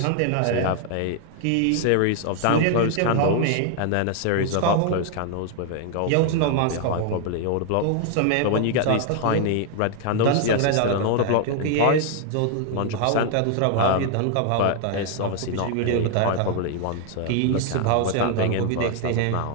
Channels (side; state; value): both; different; correlation 0.00